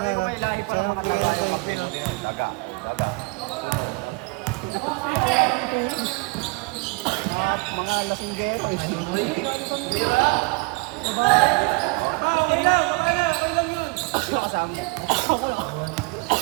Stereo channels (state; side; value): quieter; left; 28.4 dB